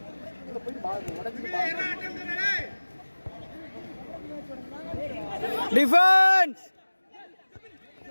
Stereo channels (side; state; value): both; inverted; correlation -1.00